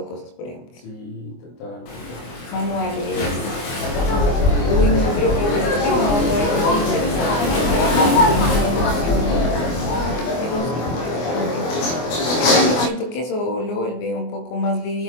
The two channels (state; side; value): late; right; 24 ms